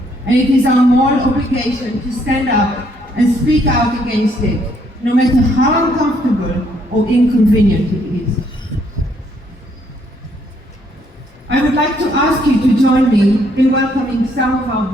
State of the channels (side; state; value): both; normal; correlation 0.69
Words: And it is our moral obligation to stand up and speak out against it, no matter how uncomfortable or inconvenient it is. I would like to ask you to join me in welcoming some of our